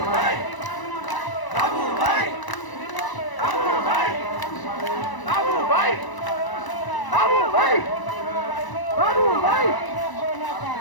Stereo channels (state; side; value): late; right; 1.0 ms